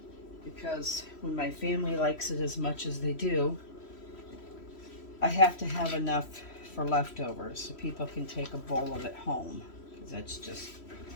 Because when my family likes it as much as they do, I have to have enough for leftovers so people can take a bowl of it home, because that's just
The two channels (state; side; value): late; right; 3.1 ms